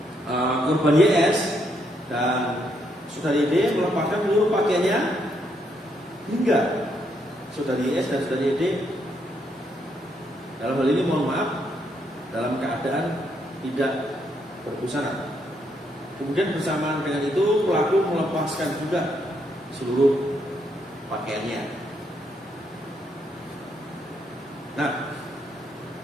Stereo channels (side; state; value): both; normal; correlation 0.75